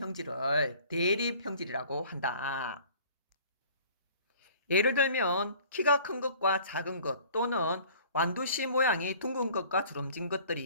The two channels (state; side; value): inverted; both; correlation -0.50